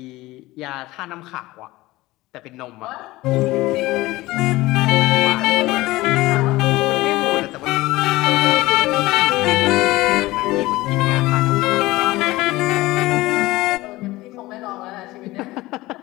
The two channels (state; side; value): quieter; right; 19.0 dB